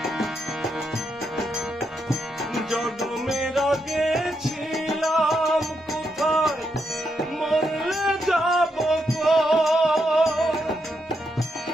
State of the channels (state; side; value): normal; both; correlation 0.81